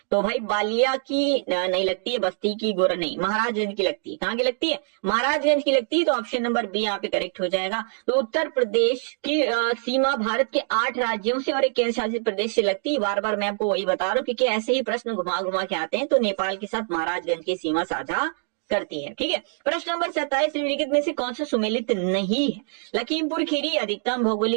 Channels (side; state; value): left; silent; 62 dB below the other